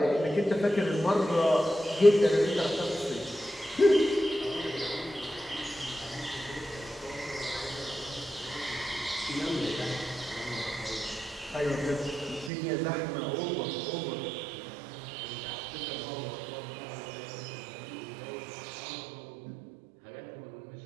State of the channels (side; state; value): left; drops out; at 12.5 s